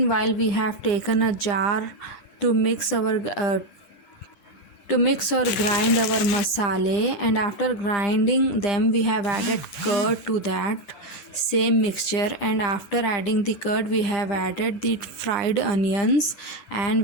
we have taken a jar to mix or grind our masala, and after grinding them we have added curd to that same mixture, and after adding the curd we have added the fried onions and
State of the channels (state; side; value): late; right; 11 ms